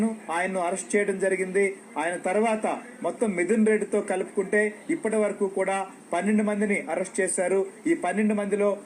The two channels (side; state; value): both; identical; correlation 1.00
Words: ఆయన్ను అరెస్ట్ చేయడం జరిగింది. ఆయన తర్వాత మొత్తం మిథున్ రెడ్డితో కలుపుకుంటే ఇప్పటి వరకు కూడా 12 మందిని అరెస్ట్ చేశారు. ఈ 12 మందిలో